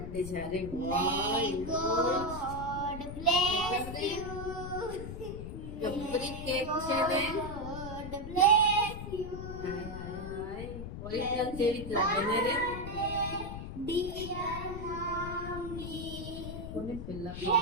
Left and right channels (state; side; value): noise; left; rumble, 8 dB below the sound